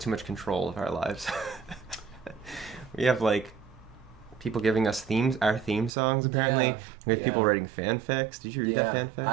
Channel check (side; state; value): left; drops out; at 5.9 s